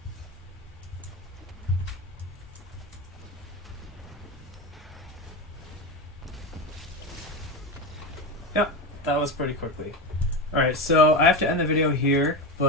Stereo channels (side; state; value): both; normal; correlation 0.18